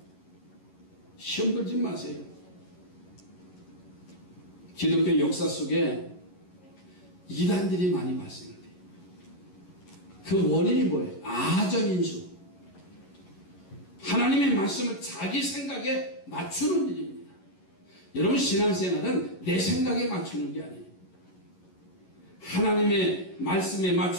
시험 들지 마세요. 기독교 역사 속에 이단들이 많이 발생돼요. 그 원인이 뭐예요? 아전인수. 하나님의 말씀을 자기 생각에 맞추는 일입니다. 여러분, 신앙생활은 내 생각에 맞추는 게 아니에요. 하나님의 말씀에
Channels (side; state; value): right; late; 11 ms